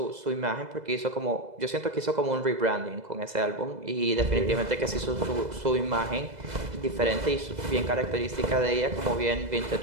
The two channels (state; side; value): late; left; 2.0 ms